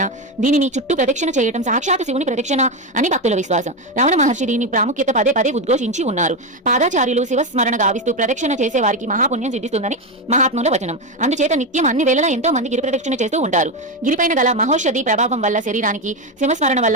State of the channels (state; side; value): normal; both; correlation 0.11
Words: దీనిని చుట్టూ ప్రదక్షిణ చేయడం సాక్షాత్ శివుని ప్రదక్షిణ అని భక్తుల విశ్వాసం. రమణ మహర్షి దీని ప్రాముఖ్యత పదే పదే ఉద్ఘోషించి ఉన్నారు. పాదాచార్యులు శివస్మరణ గావిస్తూ ప్రదక్షిణ చేసే వారికి మహాపుణ్యం సిద్ధిస్తుందని మహాత్ముల వచనం. అందుచేత నిత్యం అన్ని వేళలా ఎంతో మంది గిరి ప్రదక్షిణ చేస్తూ ఉంటారు. గిరిపైన గల మహోషధి ప్రభావం వల్ల శరీరానికి, శివస్మరణ